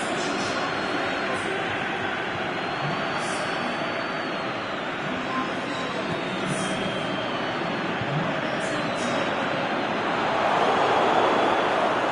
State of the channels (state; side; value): identical; both; correlation 1.00